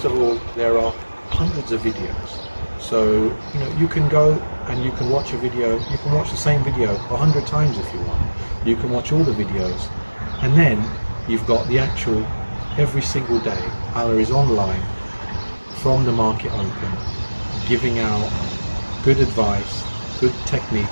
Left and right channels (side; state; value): both; inverted; correlation -1.00